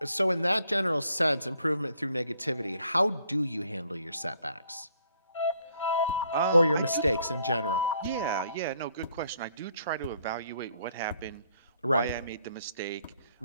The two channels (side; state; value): both; inverted; correlation -0.67